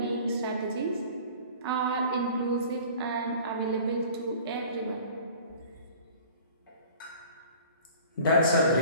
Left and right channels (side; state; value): both; inverted; correlation -0.46